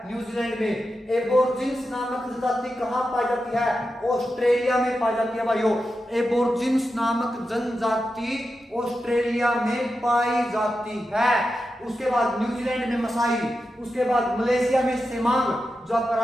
न्यूजीलैंड में। एबोर्जिन्स नामक जनजाति कहां पाई जाती है? ऑस्ट्रेलिया में पाई जाती है भाइयों। एबोर्जिन्स नामक जनजाति ऑस्ट्रेलिया में पाई जाती है। उसके बाद न्यूजीलैंड में मसाई, उसके बाद मलेशिया में सेमांग। जो आपका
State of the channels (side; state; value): both; normal; correlation 0.90